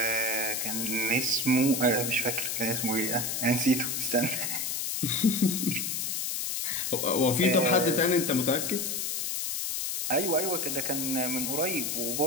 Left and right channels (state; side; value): noise; left; hiss, 1 dB below the sound